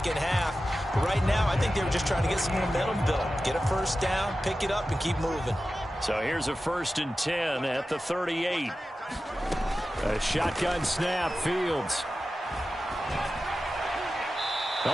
half. But right now, I think they were just trying to get some momentum built. Get a first down, pick it up, and keep moving. So here's a 1st and 10 at the 38. A shotgun snap, Fields.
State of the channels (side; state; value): both; normal; correlation 0.93